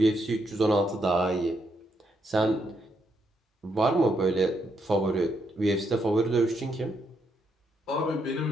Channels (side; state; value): both; normal; correlation 0.78